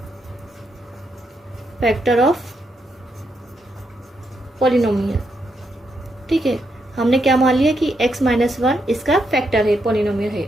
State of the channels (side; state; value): both; normal; correlation 0.80